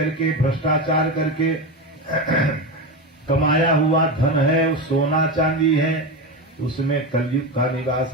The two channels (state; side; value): normal; both; correlation 0.18